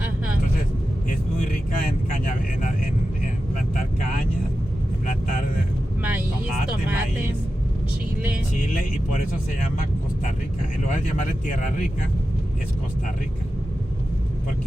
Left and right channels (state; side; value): normal; both; correlation 0.92